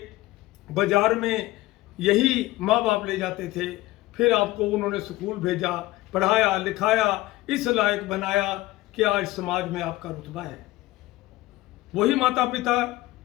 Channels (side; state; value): right; quieter; 18.1 dB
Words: बाजार में यही माँ बाप ले जाते थे, फिर आपको उन्होंने स्कूल भेजा, पढ़ाया लिखाया, इस लायक बनाया कि आज समाज में आपका रुतबा है। वही माता पिता